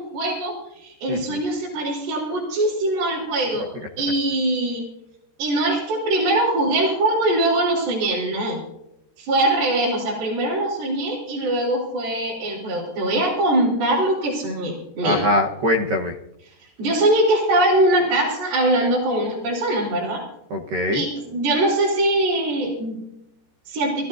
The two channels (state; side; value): late; left; 14 ms